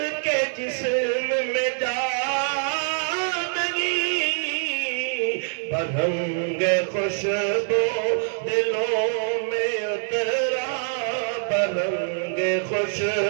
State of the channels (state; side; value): silent; left; 62 dB below the other